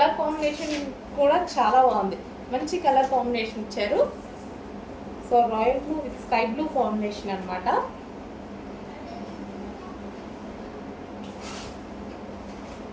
కాంబినేషన్ కూడా చాలా బాగుంది. మంచి కలర్ కాంబినేషన్ ఇచ్చారు. So royal blue with sky blue combination అనమాట.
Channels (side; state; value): both; identical; correlation 1.00